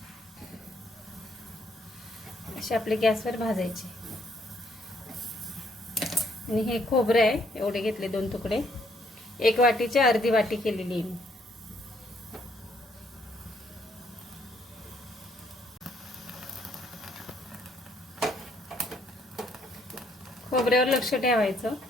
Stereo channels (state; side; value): normal; both; correlation 0.68